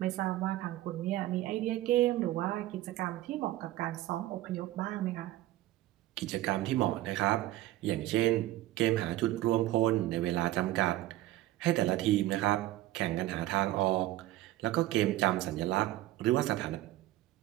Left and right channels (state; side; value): quieter; left; 15.6 dB